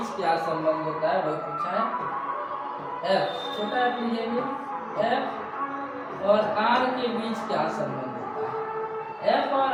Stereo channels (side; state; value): both; identical; correlation 1.00